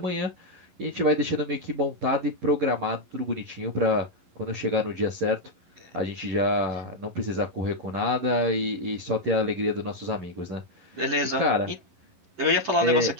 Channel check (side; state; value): left; late; 11 ms